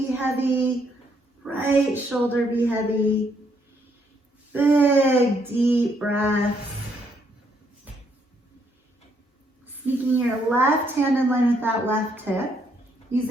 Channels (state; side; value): normal; both; correlation 0.72